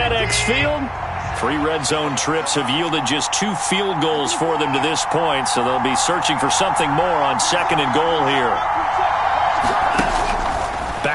Field. 3 red zone trips have yielded just 2 field goals for them to this point, so they'll be searching for something more on 2nd and goal here.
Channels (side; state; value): both; identical; correlation 1.00